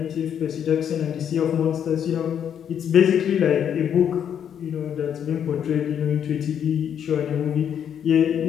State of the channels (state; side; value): quieter; right; 8.8 dB